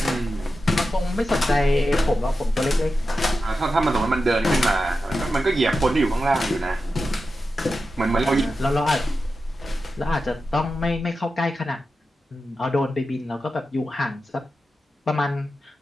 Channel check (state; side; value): normal; both; correlation 0.91